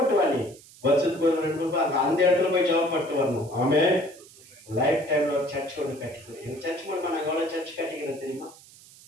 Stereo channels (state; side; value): noise; right; hiss, 22 dB below the sound